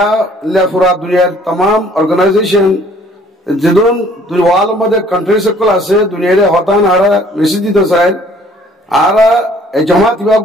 लेफुरा दुनिया तमाम ऑर्गेनाइजेशन जिदून वाल मदे कंट्री से कल आसे दुनिया रे होतान आरा रिसिदी तो साइड आरा जमात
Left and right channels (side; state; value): both; normal; correlation 0.58